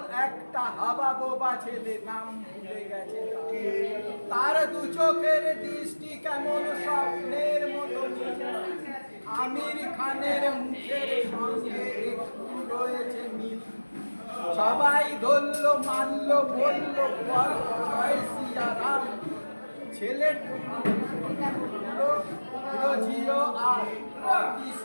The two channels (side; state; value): both; inverted; correlation -1.00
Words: একটা হাবা বোবা ছেলে নাম ভুলে গেছে তার। দু চোখের দৃষ্টি কেমন স্বপ্নের মতো, আমির খানের মুখের সঙ্গে একটু রয়েছে মিল। সবাই ধরল মানল বলল বল জয় সিয়ারাম, ছেলেটা জিও আর